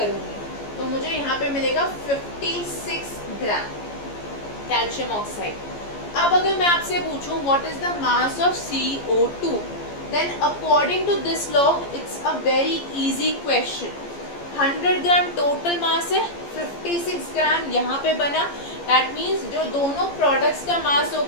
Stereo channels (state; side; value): late; right; 14 ms